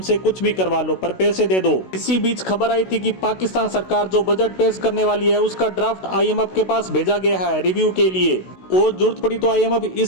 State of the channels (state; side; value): late; right; 16 ms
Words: कुछ भी करवा लो, पर पैसे दे दो। इसी बीच खबर आई थी कि पाकिस्तान सरकार जो बजट पेश करने वाली है उसका ड्राफ्ट आईएमएफ के पास भेजा गया है रिव्यू के लिए, और जरूरत पड़ी तो आईएमएफ